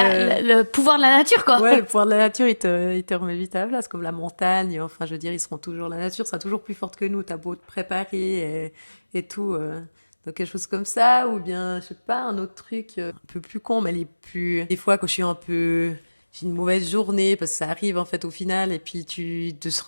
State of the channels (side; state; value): both; inverted; correlation -1.00